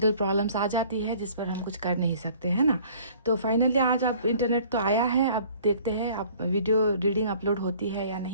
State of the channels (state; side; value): inverted; both; correlation -0.53